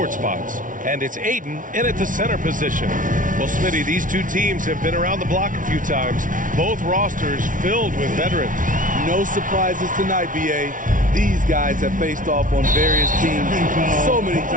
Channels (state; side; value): late; left; 0.38 ms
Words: spots. And it's Ayton in at the center position. Well, Smitty, these two teams have been around the block a few times. Both rosters filled with veterans. No surprises tonight, B.A. These guys have faced off on various teams so many